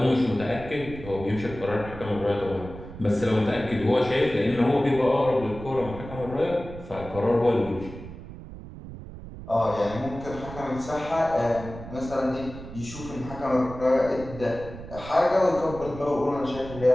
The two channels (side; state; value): right; noise; rumble, 13 dB below the sound